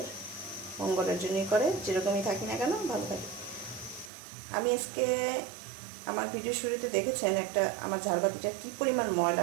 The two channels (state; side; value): drops out; left; at 4.1 s